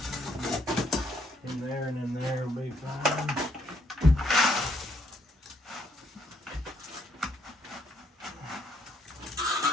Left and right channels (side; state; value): both; normal; correlation 0.71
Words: in there and in there will be fine.